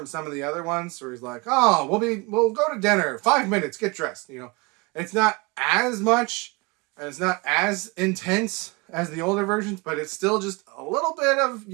some of the other ones, where he's like, oh, we'll go to dinner, 5 minutes, get dressed, you know. It's not as much, and it's not as intense as the older versions, but it's still just a little bit of,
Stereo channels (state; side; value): quieter; left; 27.1 dB